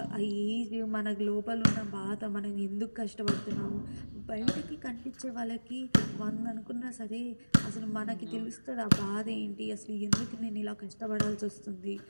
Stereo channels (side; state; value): both; inverted; correlation -1.00